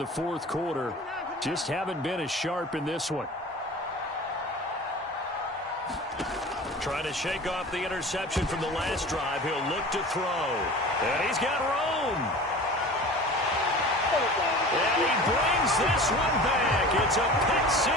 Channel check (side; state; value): both; normal; correlation 0.38